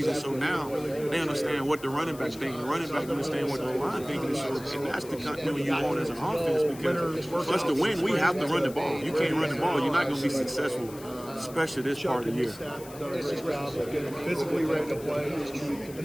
And so now they understand what the running back thinks. The running back understand what the O-line thinks. And that's the continuity you want as an offense, because for us to win, we have to run the ball. You can't run the ball, you're not going to be successful, especially this part of the year. Physically ready to play, and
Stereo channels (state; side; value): noise; left; hiss, 18 dB below the sound